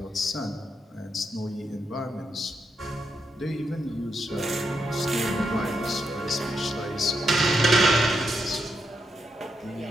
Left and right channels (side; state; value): both; normal; correlation 0.82